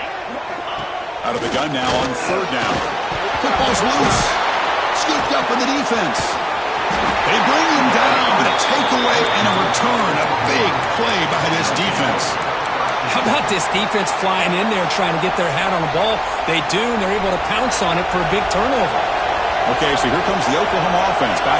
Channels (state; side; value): identical; both; correlation 1.00